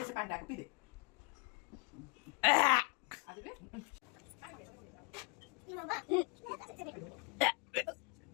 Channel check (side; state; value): right; quieter; 30.2 dB